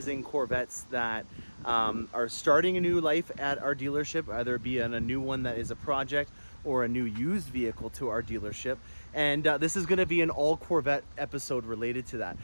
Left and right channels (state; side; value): inverted; both; correlation -1.00